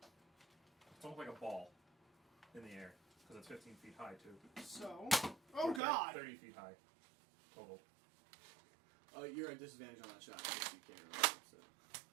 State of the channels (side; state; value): left; drops out; at 5.8 s